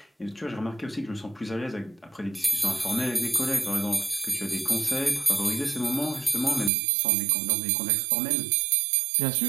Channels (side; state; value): left; drops out; at 6.7 s